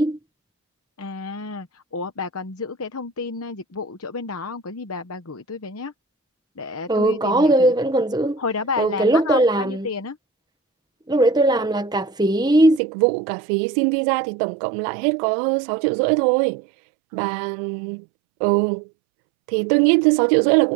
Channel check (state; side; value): drops out; left; at 12.8 s